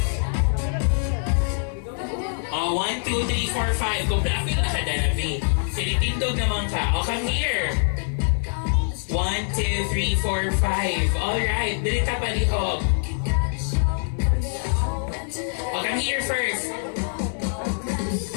Oh, 1, 2, 3, 4, 5. Kung dami na ka, Danavi. Sinitindog naman ka. Oh, come here. 1, 2, 3, 4, 5. Alright, bilit ka palihog. Oh, come here first.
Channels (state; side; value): silent; right; digital silence